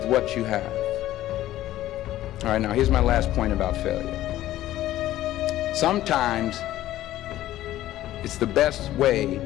what you have? All right, now here's my last point about failure. Sometimes it's the best way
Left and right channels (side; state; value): right; quieter; 14.3 dB